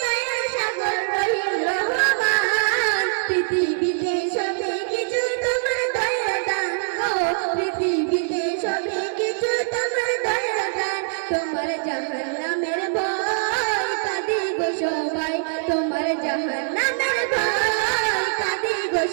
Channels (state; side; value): silent; left; 63 dB below the other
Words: দয়া সাগর রহিম রহমান, পৃথিবীতে সবে কিছু তোমার দয়া দান গো, পৃথিবীতে সবে কিছু তোমার দয়া দান। তোমার জাহান্নামের ভয় কাঁদি গো সবাই, তোমার জাহান্নামের ভয় কাঁদি গো